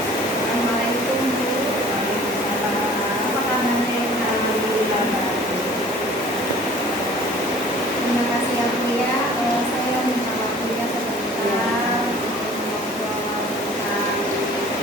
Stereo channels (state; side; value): normal; both; correlation 0.49